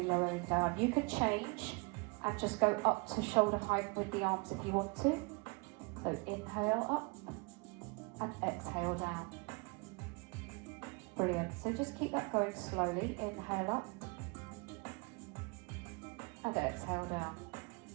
lowering down. You can change and just go up to shoulder height with the arms if you want to. So inhale up and exhale down. Brilliant. So just keep that going slowly. Inhale up and exhale down.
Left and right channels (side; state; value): left; quieter; 29.1 dB